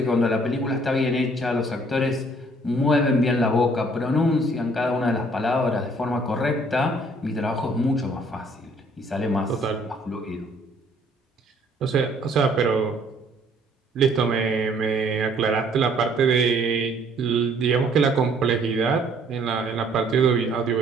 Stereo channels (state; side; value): normal; both; correlation 0.61